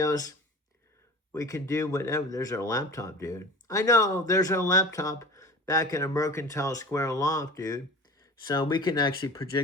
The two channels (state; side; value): normal; both; correlation 0.38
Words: We can do whatever. There's our laptop, dude. I know, there's our laptop back in a Mercantile Square loft, dude. So we can actually